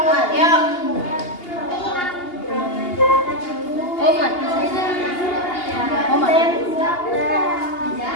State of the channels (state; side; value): late; right; 2.8 ms